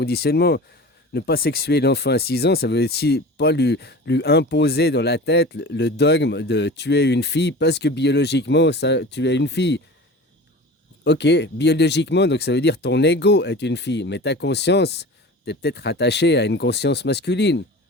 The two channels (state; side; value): normal; both; correlation 0.36